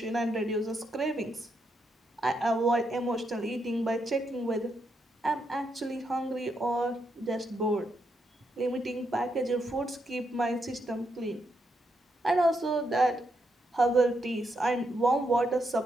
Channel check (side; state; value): both; normal; correlation 0.80